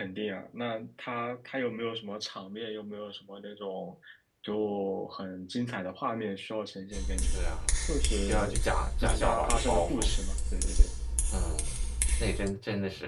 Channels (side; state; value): both; identical; correlation 1.00